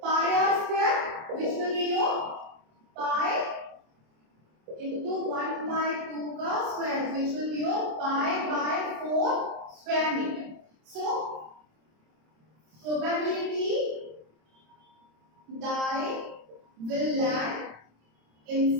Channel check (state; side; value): late; left; 26 ms